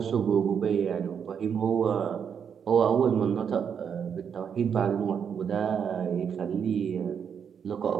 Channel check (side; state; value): left; quieter; 7.4 dB